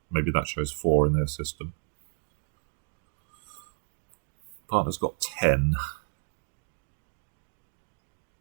Maybe that shows 4 in their system. Partner's got 10.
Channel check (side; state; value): left; silent; digital silence